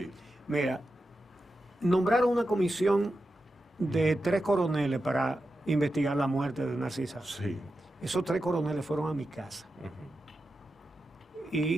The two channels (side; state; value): both; normal; correlation 0.90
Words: Mira, nombraron una comisión de 3 coroneles para investigar la muerte de Narcisa. Sí. Esos 3 coroneles fueron a mi casa. Ujú.